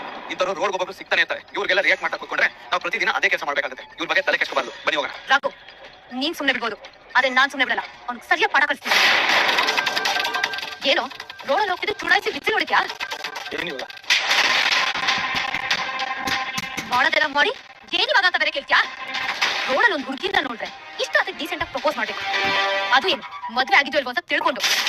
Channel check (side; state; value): both; identical; correlation 1.00